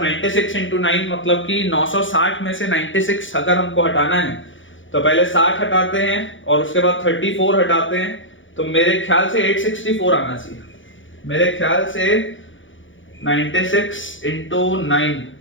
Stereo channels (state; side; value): late; right; 0.56 ms